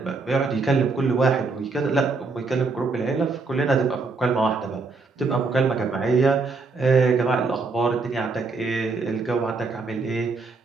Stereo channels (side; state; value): left; quieter; 4.1 dB